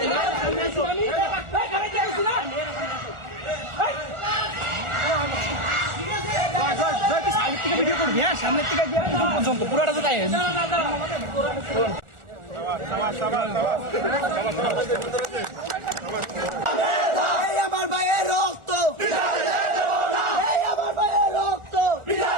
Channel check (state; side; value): late; left; 1.4 ms